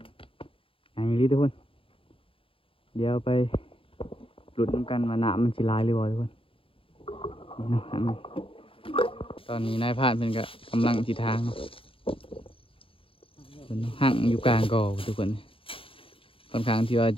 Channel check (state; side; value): late; right; 0.26 ms